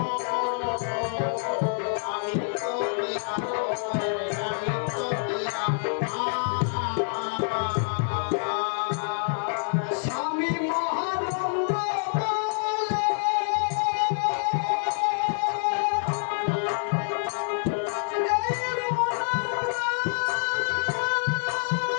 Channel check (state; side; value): silent; right; 60 dB below the other